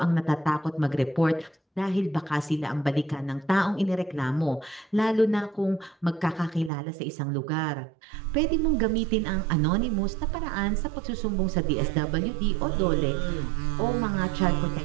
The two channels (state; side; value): drops out; left; at 6.7 s